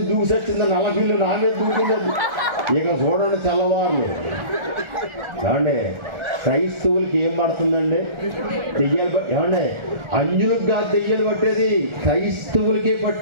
దూసొచ్చింది, నల్లపిల్లు నానే దూకింది. ఇక చూడండి తెల్లవారులు. ఏమండి క్రైస్తవులకి ఏం పడుతుందండి? దెయ్యాలు. ఏమండి అంజులకు కాదు దెయ్యాలు పట్టేది, క్రైస్తవులకే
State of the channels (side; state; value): left; late; 1.4 ms